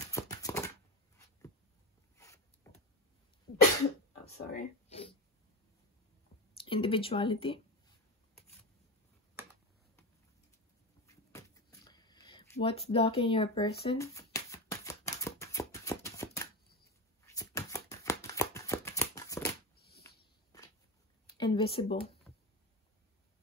Oh, sorry. Individuality. What's blocking your person? Invisible.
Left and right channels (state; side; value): normal; both; correlation 0.19